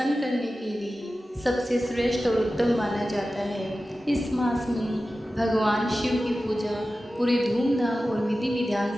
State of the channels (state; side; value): normal; both; correlation 0.94